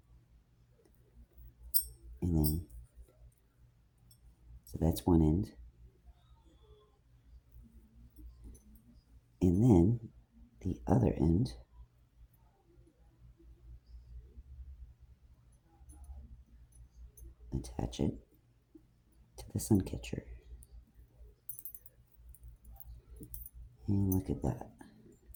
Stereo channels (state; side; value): identical; both; correlation 1.00